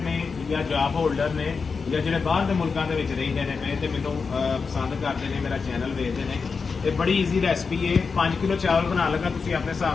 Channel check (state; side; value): quieter; right; 5.1 dB